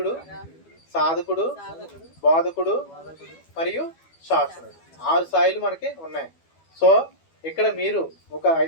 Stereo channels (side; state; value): right; late; 12 ms